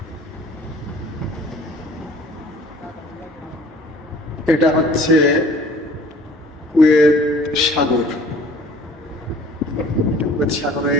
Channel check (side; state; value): both; normal; correlation 0.51